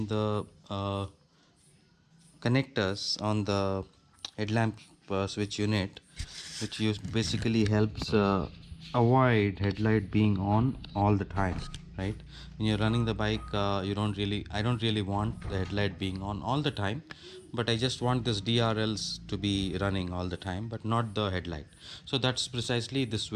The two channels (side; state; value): both; identical; correlation 1.00